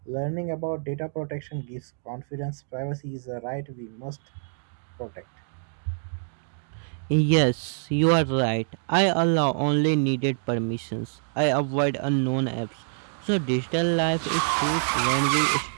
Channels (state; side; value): silent; left; digital silence